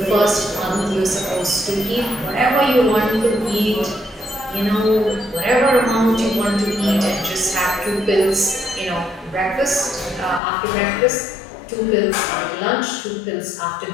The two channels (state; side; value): drops out; right; at 10.4 s